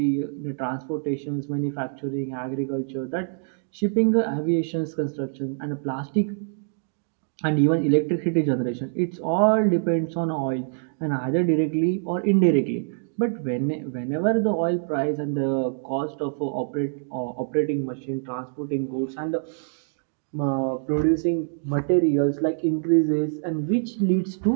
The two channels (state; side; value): silent; left; digital silence